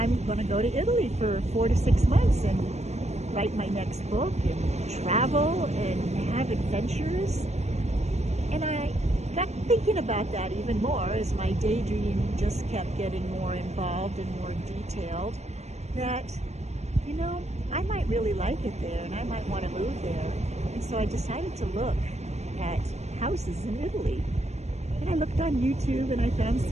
going to go to Italy for 4 to 6 months and write my next book and travel and have adventures. And I got thinking about that even more as my daydream just kept getting more involved and more detailed, that, I might really like it there and I might want to move there. And so I decided to look at houses in Italy. And I looked on YouTube and I found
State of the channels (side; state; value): left; late; 0.32 ms